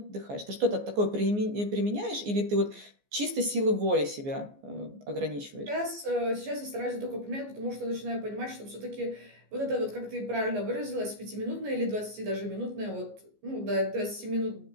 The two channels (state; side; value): late; left; 14 ms